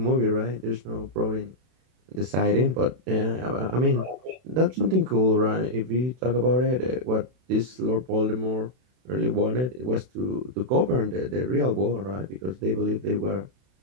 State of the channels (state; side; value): late; left; 32 ms